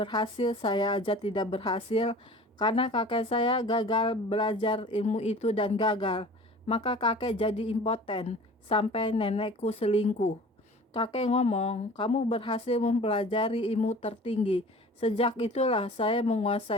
saya aja tidak berhasil. Karena kakek saya gagal belajar ilmu itu dan gagal. Maka kakek jadi impoten sampai nenekku selingkuh. Kakek ngomong, kamu berhasil mempelajari ilmu tertinggi. Sejak itulah saya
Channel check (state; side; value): normal; both; correlation 0.43